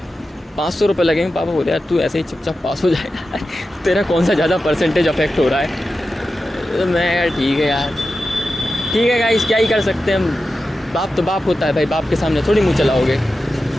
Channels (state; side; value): normal; both; correlation 0.92